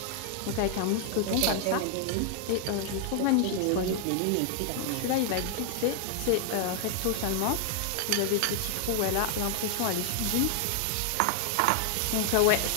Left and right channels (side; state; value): both; different; correlation 0.00